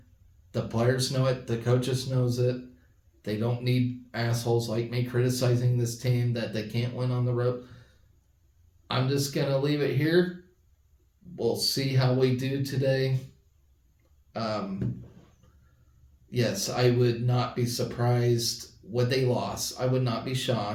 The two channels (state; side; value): identical; both; correlation 1.00